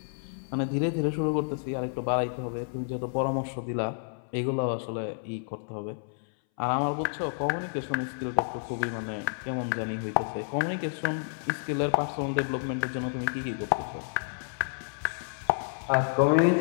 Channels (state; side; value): silent; right; 58 dB below the other